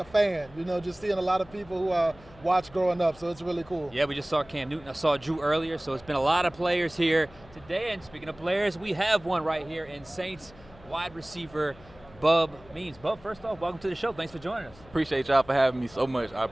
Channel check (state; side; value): noise; left; hum, 23 dB below the sound